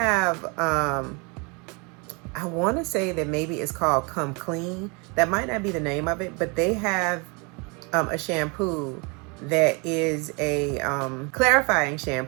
I want to say that maybe it's called Come Clean. That might not be the name of it, but they have a shampoo that is a clarifying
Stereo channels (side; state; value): left; quieter; 30.8 dB